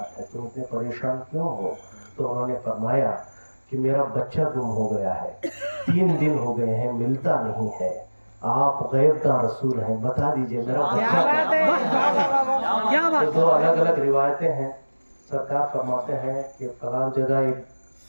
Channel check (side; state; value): both; inverted; correlation -1.00